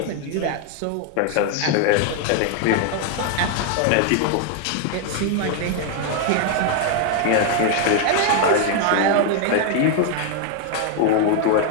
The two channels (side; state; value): both; different; correlation 0.01